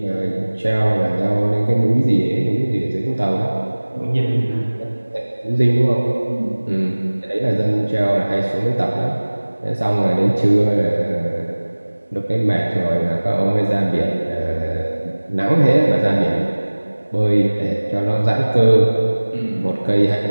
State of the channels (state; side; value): inverted; both; correlation -1.00